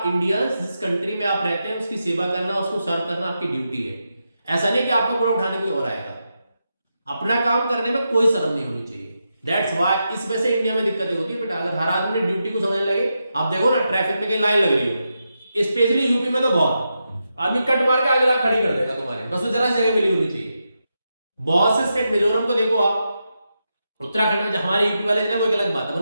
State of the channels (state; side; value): inverted; both; correlation -0.87